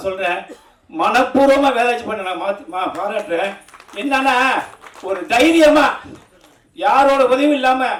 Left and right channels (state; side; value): identical; both; correlation 1.00